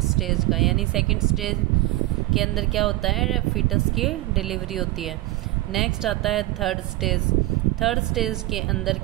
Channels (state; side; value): quieter; left; 18.4 dB